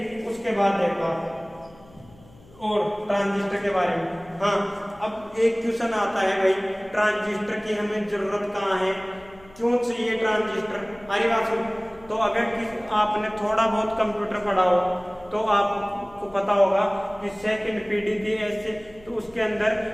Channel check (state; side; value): noise; left; hum, 25 dB below the sound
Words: उसके बाद देखो आप और ट्रांजिस्टर के बारे में, हाँ अब एक क्वेश्चन आता है भाई ट्रांजिस्टर की हमें जरूरत कहाँ है, क्यों चाहिए ट्रांजिस्टर। अरे बात सुन, तो अगर आपने थोड़ा बहुत कंप्यूटर पढ़ा हो तो आपको पता होगा कि सेकंड पीढ़ी थी ऐसे, तो उसके अंदर